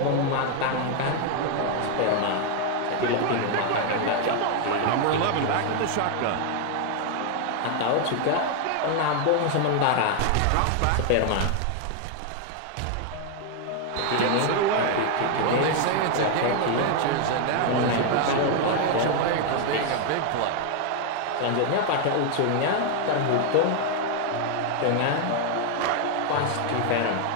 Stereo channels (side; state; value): both; different; correlation 0.00